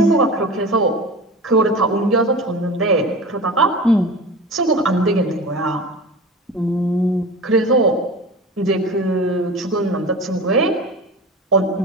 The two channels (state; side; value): normal; both; correlation 0.33